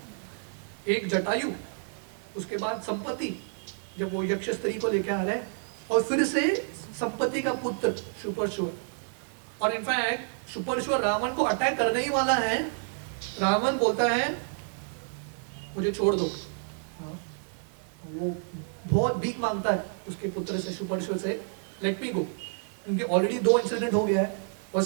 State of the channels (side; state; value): left; silent; digital silence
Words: एक जटायु, उसके बाद संपत्ति जब वो यक्ष स्त्री को लेके आ रहा है, और फिर से संपत्ति का पुत्र सुपरशिव। और इनफैक्ट सुपरशिव रावण को अटैक करने ही वाला है, रावण बोलता है मुझे छोड़ दो। वो बहुत भीख मांगता है उसके पुत्र से, सुपरशिव से, लेट मी गो। उनके ऑलरेडी 2 इंसिडेंट हो गया है, और